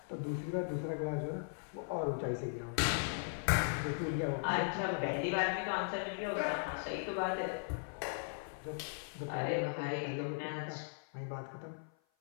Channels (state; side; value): silent; right; 52 dB below the other